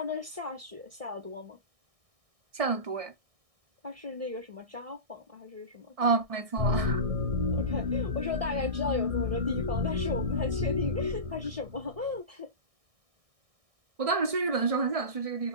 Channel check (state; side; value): late; left; 1.6 ms